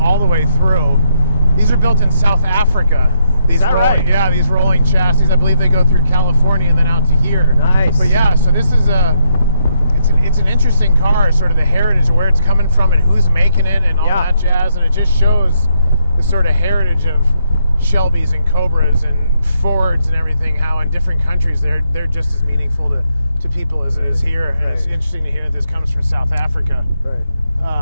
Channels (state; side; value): inverted; both; correlation -0.77